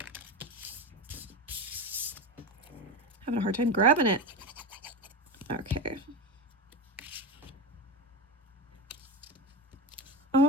Having a hard time grabbing it. Okay.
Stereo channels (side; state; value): both; normal; correlation 0.21